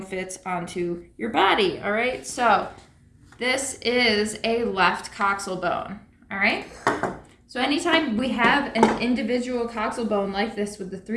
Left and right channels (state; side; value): identical; both; correlation 1.00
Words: fits onto your body. All right, so this is a left coxal bone. All right, so anytime we have an individual coxal bone like this with the